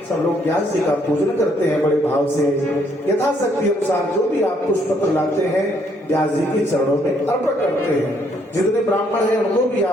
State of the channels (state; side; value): normal; both; correlation 0.69